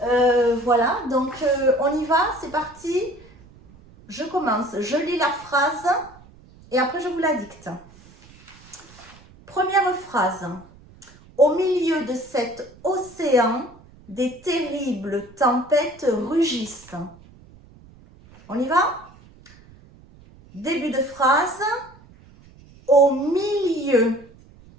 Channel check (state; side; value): noise; right; rumble, 24 dB below the sound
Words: Voilà, donc on y va, c'est parti. Je commence, je lis la phrase et après je vous la dicte. Première phrase. Au milieu de cet océan, des terribles tempêtes rugissent. On y va? Début de phrase. Au milieu